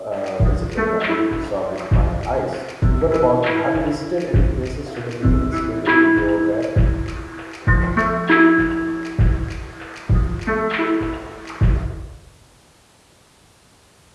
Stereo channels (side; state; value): both; identical; correlation 1.00